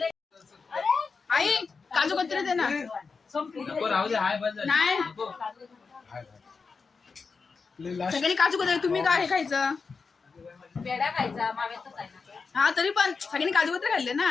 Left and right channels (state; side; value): quieter; right; 4.8 dB